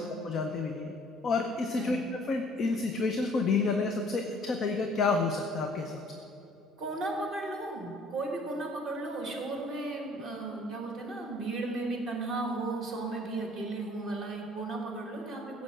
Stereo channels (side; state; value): both; normal; correlation 0.56